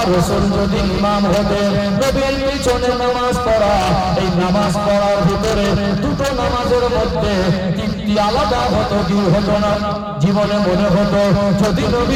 রাসূল যদি ইমাম হতেন, নবীর পিছনে নামাজ পড়া, এই নামাজ পড়ার ভিতরে দুটো নামাজের মধ্যে তৃপ্তি আলাদা হতো কি হতো না? জীবনে মনে হতো যদি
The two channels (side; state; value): both; identical; correlation 1.00